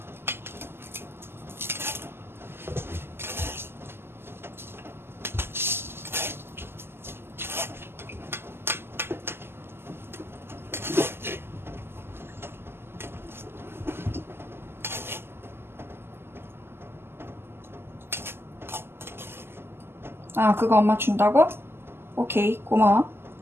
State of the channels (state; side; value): late; left; 0.12 ms